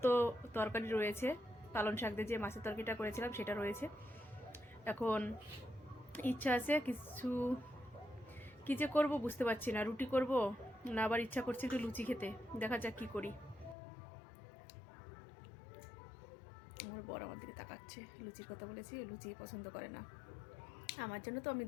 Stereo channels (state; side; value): drops out; right; at 13.8 s